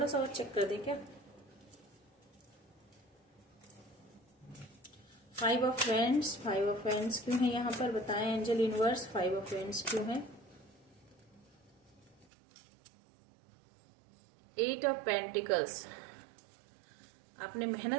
सा और चेक कर दें क्या। 5 of Wands, 5 of Wands क्यों है यहाँ पर, बताएं एंजल यूनिवर्स, 5 of Wands क्यों है। 8 of Pentacles, आपने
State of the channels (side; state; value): left; drops out; at 12.2 s